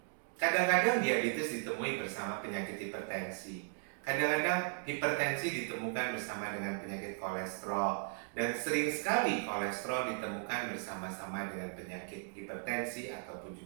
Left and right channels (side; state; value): left; silent; 53 dB below the other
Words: kadang-kadang diabetes ditemui bersama penyakit hipertensi. Kadang-kadang hipertensi ditemukan bersama dengan penyakit kolesterol, dan sering sekali kolesterol ditemukan bersama-sama dengan penyakit hipertensi ataupun